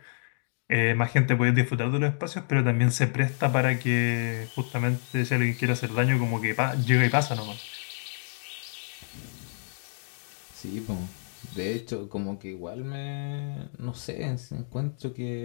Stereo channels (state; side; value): silent; right; 59 dB below the other